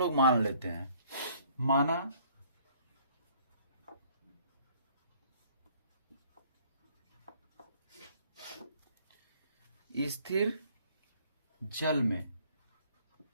मान लेते हैं। माना स्थिर जल में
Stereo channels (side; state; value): both; inverted; correlation -0.59